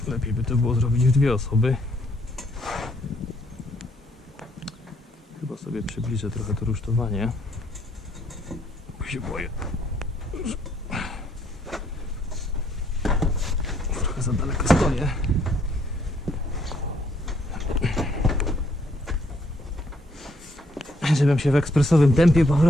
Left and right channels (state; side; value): normal; both; correlation 0.69